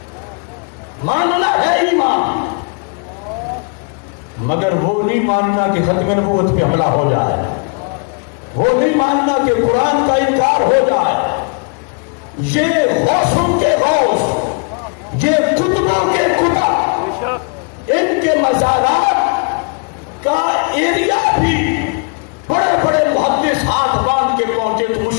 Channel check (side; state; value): right; quieter; 37.9 dB